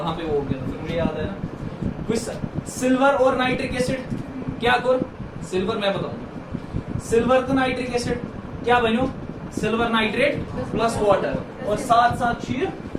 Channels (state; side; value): identical; both; correlation 1.00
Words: पे वो हो गया फिर मुझे याद है ना कुछ सिल्वर और नाइट्रिक एसिड क्या कर सिल्वर मैं बताऊंगा सिल्वर तो नाइट्रिक एसिड क्या बनो सिल्वर नाइट्रेट प्लस वाटर और साथ साथ